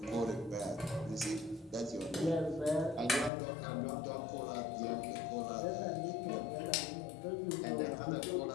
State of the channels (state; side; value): drops out; right; at 3.3 s